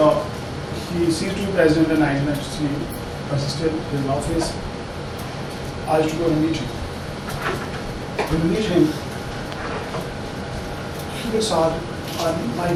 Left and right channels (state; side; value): identical; both; correlation 1.00